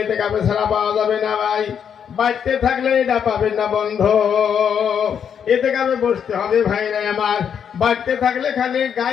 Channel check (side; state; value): right; quieter; 7.9 dB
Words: ইতিকাফে ছাড়া পাওয়া যাবে না ভাই। বাড়তে থাকলে এটা পাবেন না বন্ধু, ইতিকাফে বসতে হবে ভাইরা আমার। বাড়তে থাকলে খালি